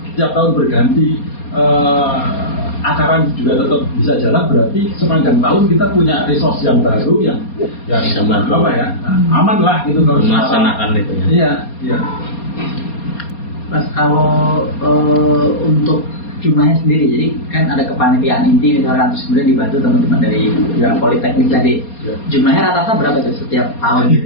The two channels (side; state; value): right; late; 4.3 ms